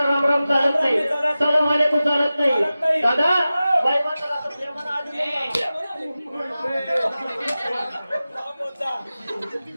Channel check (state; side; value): inverted; both; correlation -0.95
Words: राम राम चालत नाही सलाम वालेकुम चालत नाही दादा बाई माणसाला आपण प्रेमानं आधी